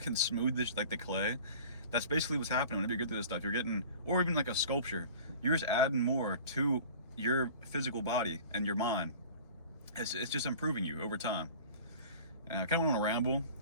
smooth this like the clay. That's basically what's happening whenever you get through this stuff. You're getting, or even like a sculpture, you're just adding more to your physical body and your mind. It's just improving you over time. And I kind of went on a ramble,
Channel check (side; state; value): both; inverted; correlation -0.42